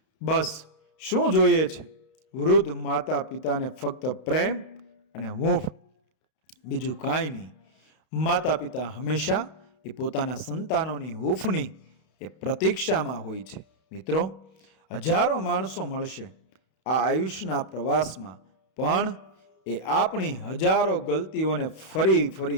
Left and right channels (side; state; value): right; late; 32 ms